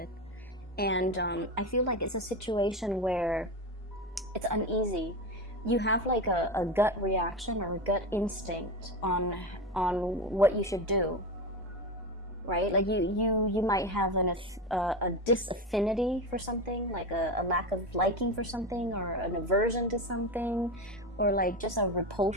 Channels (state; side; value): normal; both; correlation 0.20